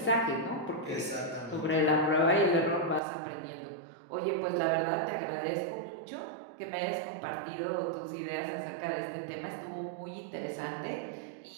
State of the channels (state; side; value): drops out; left; at 3.0 s